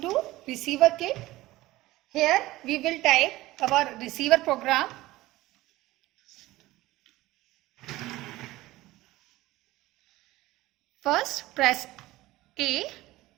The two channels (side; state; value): left; quieter; 17.8 dB